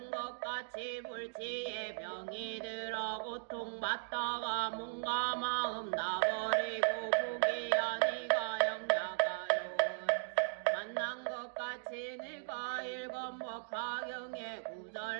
것 같이 불치에 병이 들어 고통받다가 몸과 마음 나버리고 부기야 네가 영야가요 만난 것 같이 내가 읽은 법화경의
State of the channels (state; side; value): silent; left; digital silence